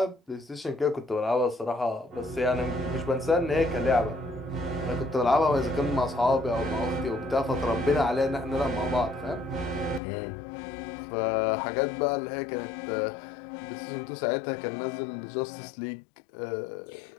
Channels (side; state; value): right; drops out; at 10.0 s